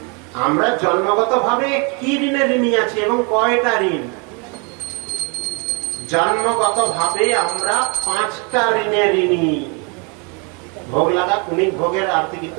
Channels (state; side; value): quieter; left; 33.4 dB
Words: আমরা জন্মগত ভাবে কি ঋণে ঋণী আছি এবং কয়টা ঋণ? জন্মগত ভাবে আমরা 5টা ঋণে ঋণী। ভোগ লাগা কুণিক ভোগের আরতি